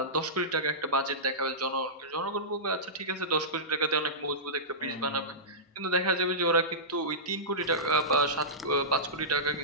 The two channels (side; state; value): both; normal; correlation -0.17